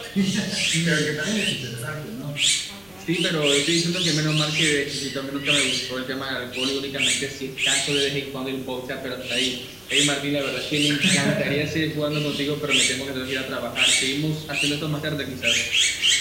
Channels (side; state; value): left; noise; rumble, 27 dB below the sound